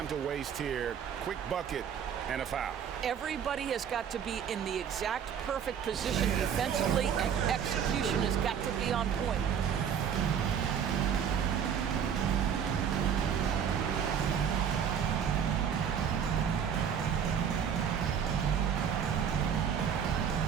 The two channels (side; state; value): left; quieter; 8.0 dB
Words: to waste here. Quick bucket and a foul. Everybody has got to be in the exact perfect position defensively, and execution has got to be on point.